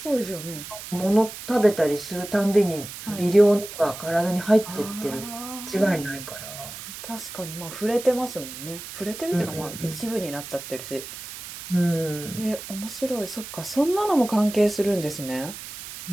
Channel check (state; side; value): noise; right; hiss, 11 dB below the sound